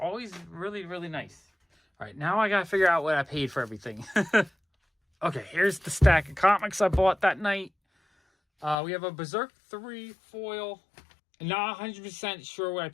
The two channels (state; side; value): drops out; right; at 8.8 s